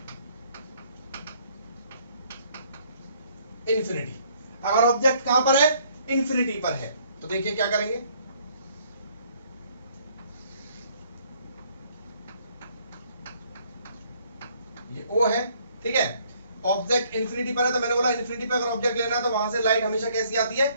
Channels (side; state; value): both; inverted; correlation -0.64